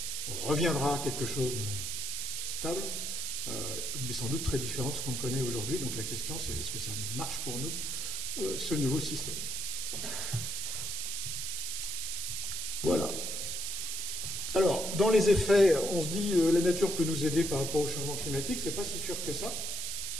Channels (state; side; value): noise; right; hiss, 3 dB below the sound